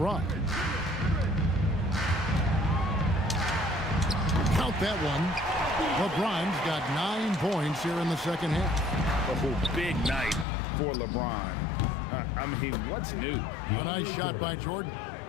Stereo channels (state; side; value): drops out; right; at 10.5 s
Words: Count that one. LeBron's got 9 points here in the second half. Oh, big night for LeBron. I mean, what's new? A nice shot by Jordan.